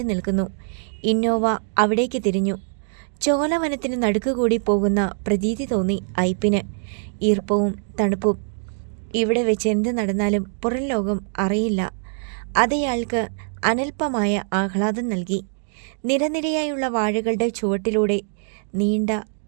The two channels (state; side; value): silent; left; digital silence